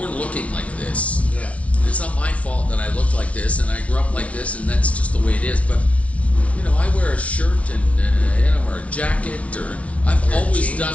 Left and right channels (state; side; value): late; right; 0.064 ms